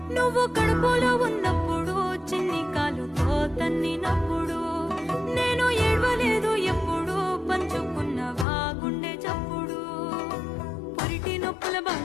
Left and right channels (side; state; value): right; drops out; at 8.5 s